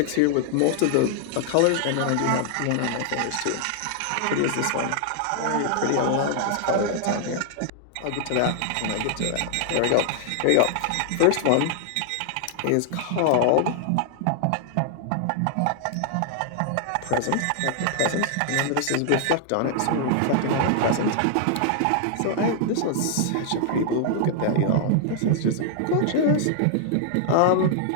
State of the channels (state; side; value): different; both; correlation 0.00